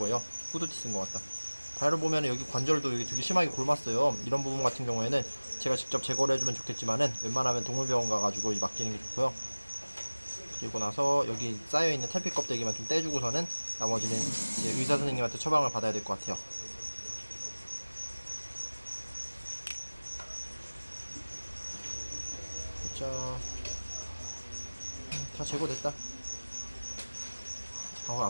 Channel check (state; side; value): inverted; both; correlation -1.00